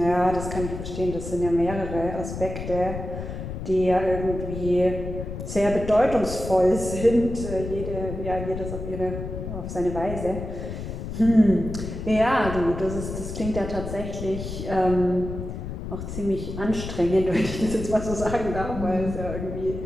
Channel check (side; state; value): left; noise; rumble, 7 dB below the sound